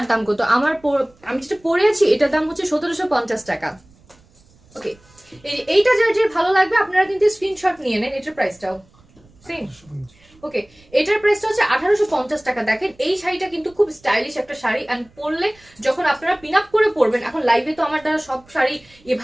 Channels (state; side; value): noise; right; rumble, 30 dB below the sound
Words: দাম কত, আমি যেটা পরে আছি এটার দাম হচ্ছে 1750 টাকা। ওকে, এইটা যার যে ভালো লাগবে আপনারা কিন্তু স্ক্রিনশট নিয়ে নেন। এটার প্রাইসটাও সেম। ওকে, এটার প্রাইসটা হচ্ছে 1850 টাকা। দেখেন এই শাড়িটা কিন্তু খুব স্টাইলিশ একটা শাড়ি, এন্ড পরলে যখন আপনারা পিন আপ করে পরবেন, এখন লাইভে তো আমার দ্বারা সব শাড়ি